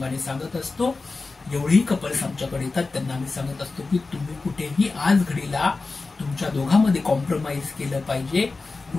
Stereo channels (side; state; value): right; quieter; 3.8 dB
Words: सांगत असतो। जेवढेही कपल्स आमच्याकडे येतात त्यांना आम्ही सांगत असतो की तुम्ही कुठेही आज घडीला तुमच्या दोघांमध्ये कॉम्प्रोमाइज केलं पाहिजे,